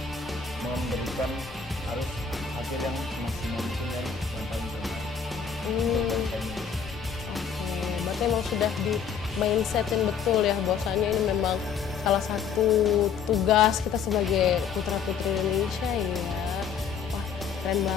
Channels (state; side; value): quieter; right; 6.7 dB